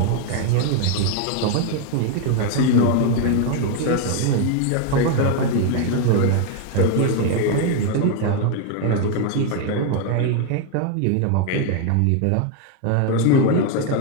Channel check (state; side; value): different; both; correlation 0.01